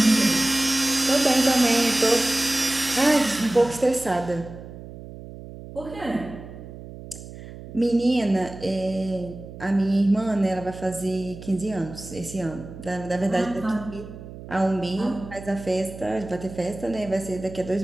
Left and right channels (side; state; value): right; noise; hum, 14 dB below the sound